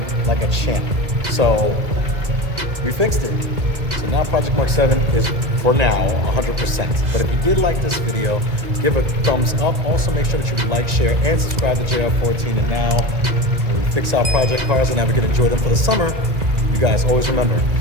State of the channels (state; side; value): late; left; 2.1 ms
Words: like a champ. So we fixed it. So now Project Mark 7 is, for now, 100%. But if you did like this video, give a thumbs up. Also make sure that you like, share, and subscribe to JR14. And now we fix our project cars and have a good enjoy them for the summer. You guys always remember